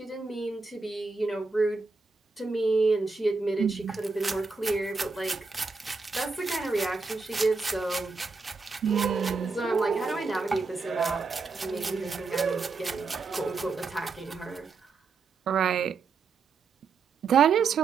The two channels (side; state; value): left; quieter; 4.4 dB